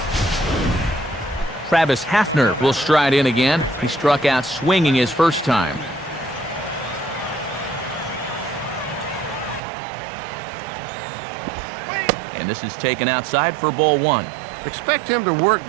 Travis Hafner will stride in again. He struck out swinging his first time. And this is taken outside for ball 1. Expect him to work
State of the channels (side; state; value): left; drops out; at 9.6 s